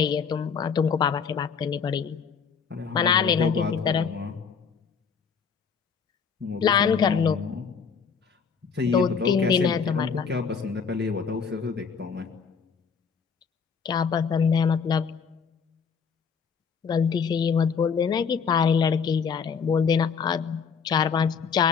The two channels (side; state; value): right; quieter; 6.2 dB